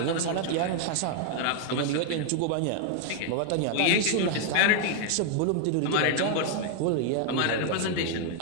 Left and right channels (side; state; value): both; different; correlation 0.00